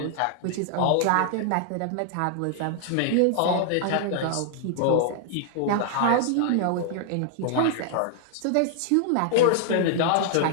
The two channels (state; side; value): different; both; correlation -0.01